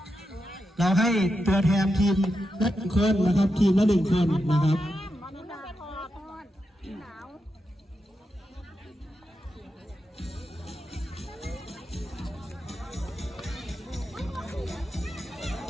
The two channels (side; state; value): both; normal; correlation 0.87